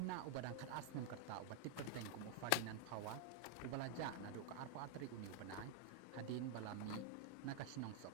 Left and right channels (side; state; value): both; different; correlation 0.00